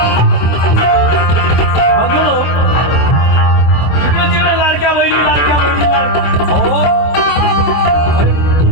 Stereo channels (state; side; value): late; right; 24 ms